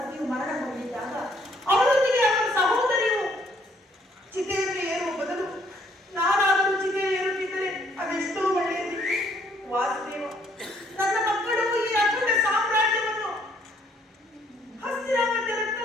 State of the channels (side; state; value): both; normal; correlation 0.66